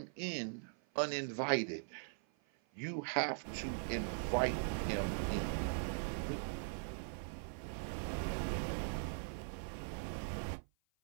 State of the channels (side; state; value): left; silent; 50 dB below the other